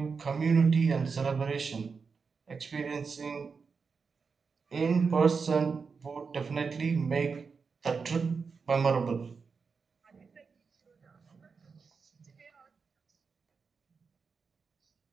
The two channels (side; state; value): left; quieter; 5.2 dB